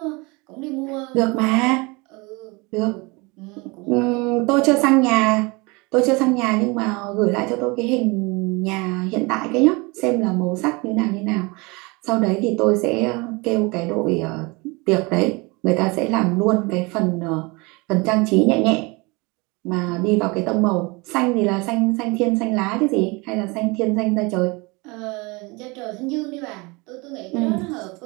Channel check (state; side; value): quieter; left; 26.6 dB